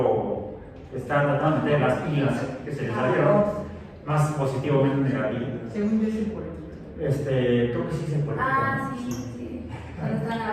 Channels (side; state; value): both; identical; correlation 1.00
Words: que está tratando de meter las pilas que se le salieron, más positivo, menos negativo. Según yo, sí, por creo que sí se puede. Sí. Cuando está la